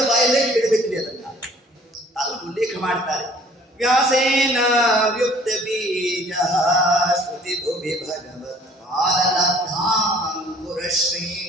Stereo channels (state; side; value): normal; both; correlation 0.55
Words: ಬಾಯಲ್ಲೇ ಕೇಳಬೇಕ್ರಿ ಅದನ್ನ. ಅವರು ಉಲ್ಲೇಖ ಮಾಡ್ತಾರೆ. ವ್ಯಾಸೇನ ವ್ಯುಕ್ತ ಬೀಜ ಶ್ರುತಿ ಭುವಿ ಭಗವತ್ ಪಾದಲಬ್ಧಾಂಕುರಶ್ರೀ